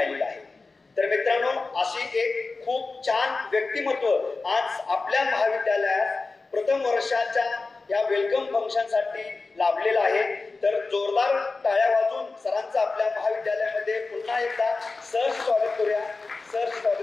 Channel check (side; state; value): right; quieter; 3.8 dB